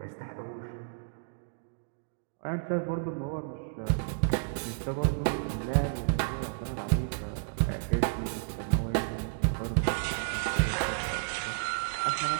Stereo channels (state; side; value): silent; left; digital silence